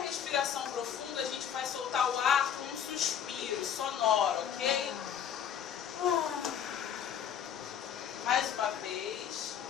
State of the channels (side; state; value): right; quieter; 8.8 dB